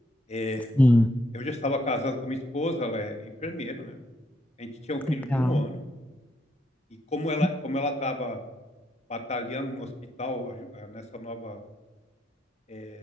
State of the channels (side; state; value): both; normal; correlation 0.75